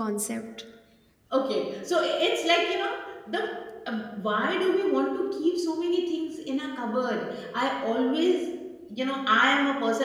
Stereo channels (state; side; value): identical; both; correlation 1.00